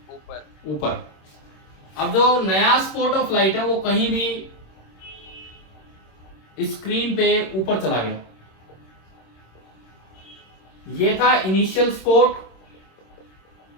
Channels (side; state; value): right; late; 26 ms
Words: ऊपर. ऊपर। अब जो नया स्पॉट ऑफ लाइट है वो कहीं भी स्क्रीन पे ऊपर चला गया। ये था इनिशियल स्पॉट